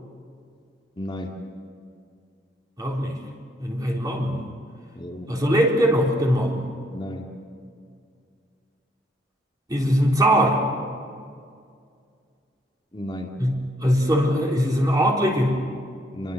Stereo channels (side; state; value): both; normal; correlation 0.69